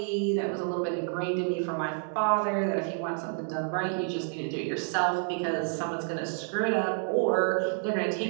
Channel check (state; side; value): silent; left; 58 dB below the other